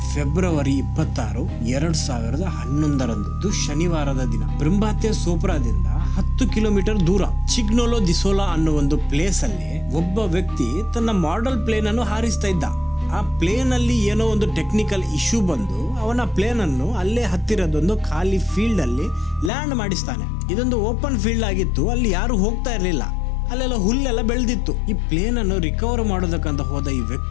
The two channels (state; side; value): drops out; right; at 19.5 s